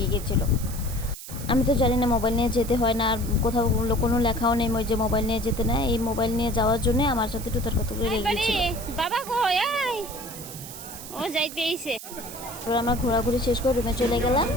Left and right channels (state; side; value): noise; right; hiss, 12 dB below the sound